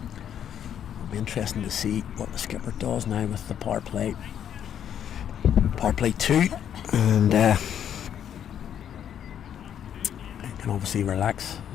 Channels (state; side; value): quieter; right; 9.4 dB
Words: It'll be interesting to see what the skipper does now with the power play 2, and he can obviously relax